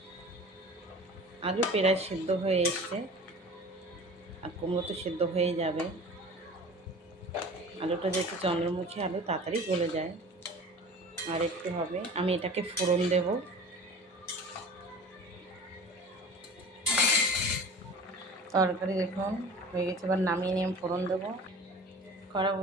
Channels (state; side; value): normal; both; correlation 0.40